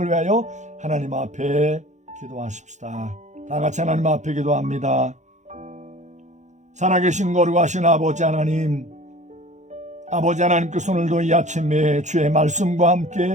위하여 하나님 앞에 기도하십시다. 다 같이 하나님 앞에 기도합니다. 살아계신 거룩하신 아버지 하나님, 아버지 하나님께서 오늘도 이 아침에 주의 말씀과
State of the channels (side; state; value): left; late; 0.34 ms